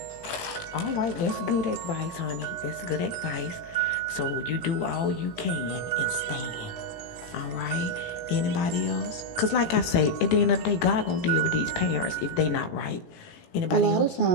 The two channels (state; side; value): late; right; 18 ms